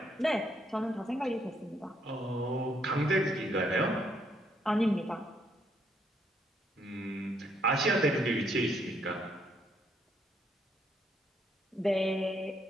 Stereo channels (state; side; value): normal; both; correlation 0.72